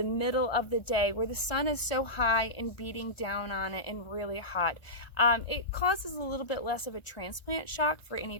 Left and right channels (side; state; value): right; late; 1.5 ms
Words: middle of the day where the sun is so high and beating down on it and really hot. It causes a little bit less of a transplant shock for